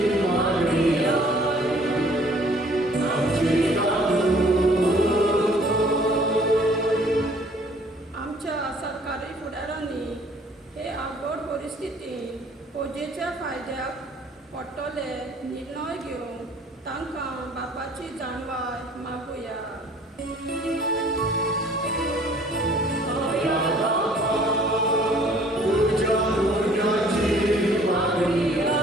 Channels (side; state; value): both; normal; correlation 0.56